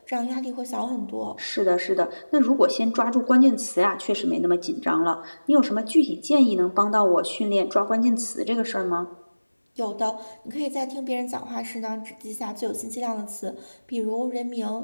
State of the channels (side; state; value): both; inverted; correlation -1.00